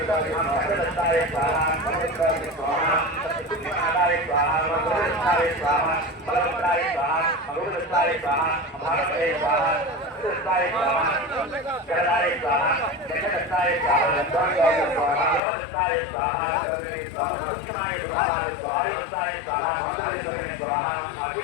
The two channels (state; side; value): drops out; right; at 15.4 s